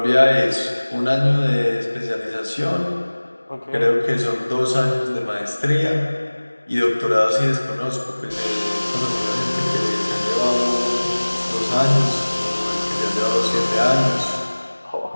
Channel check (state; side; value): inverted; both; correlation -1.00